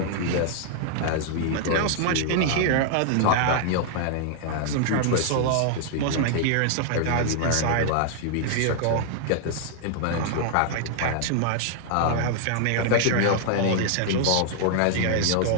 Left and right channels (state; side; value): different; both; correlation -0.01